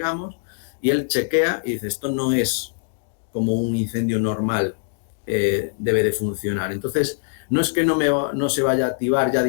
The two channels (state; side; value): silent; right; digital silence